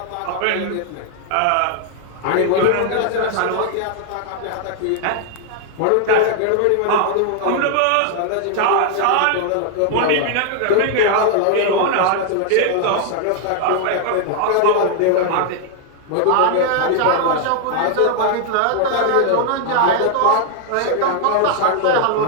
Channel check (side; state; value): both; different; correlation 0.00